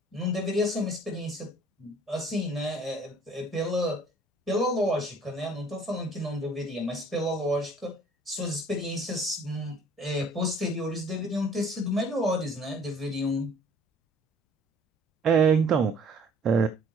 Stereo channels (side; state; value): both; normal; correlation 0.55